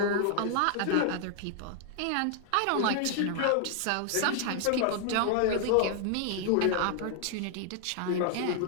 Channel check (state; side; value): different; both; correlation 0.00